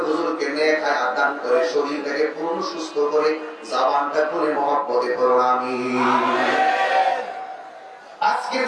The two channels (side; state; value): both; identical; correlation 1.00